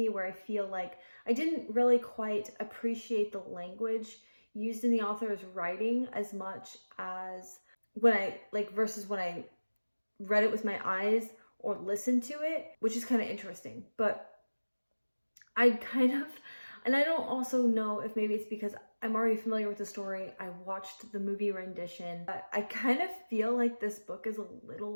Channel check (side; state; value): both; inverted; correlation -1.00